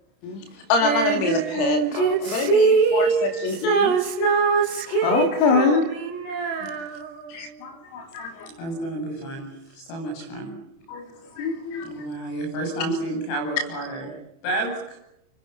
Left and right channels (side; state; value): right; late; 30 ms